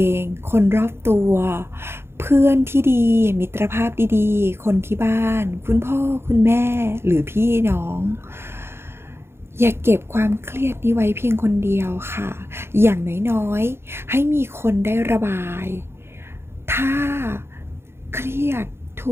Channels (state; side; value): late; left; 0.12 ms